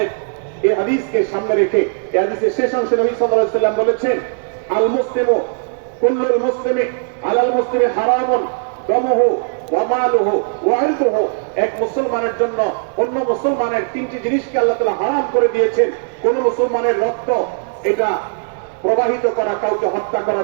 এই হাদিসকে সামনে রেখে এই হাদিসের শেষ অংশে নবী সাল্লাল্লাহু আলাইহি ওয়াসাল্লাম বলেছেন, আল মুসলিমু কুল্লুল মুসলিমি আলাল মুসলিমি হারামুন দামুহু ওয়া মালুহু ওয়া ইরদুহু। এক মুসলমানের জন্য অন্য মুসলমানের তিনটি জিনিসকে আল্লাহ তাআলা হারাম করে দিয়েছেন। কোন মুসলমানের রক্ত এটা প্রবাহিত করা, কাউকে হত্যা করা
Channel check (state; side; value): silent; left; 64 dB below the other